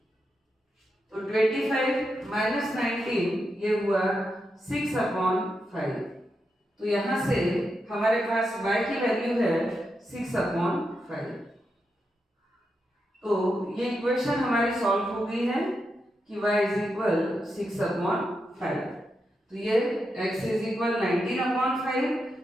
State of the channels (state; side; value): normal; both; correlation 0.85